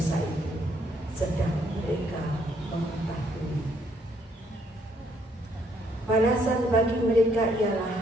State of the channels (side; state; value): both; normal; correlation 0.69